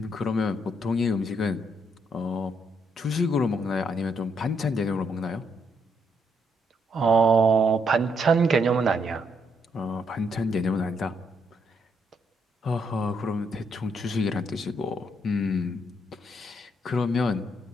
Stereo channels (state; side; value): normal; both; correlation 0.75